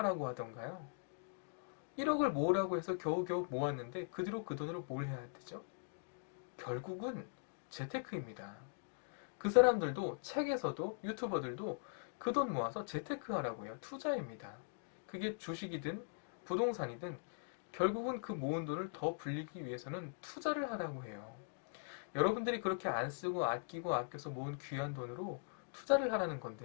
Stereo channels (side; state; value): right; silent; digital silence